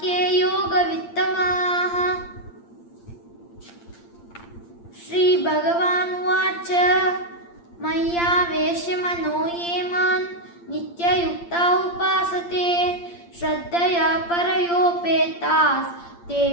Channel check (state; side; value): late; right; 8.7 ms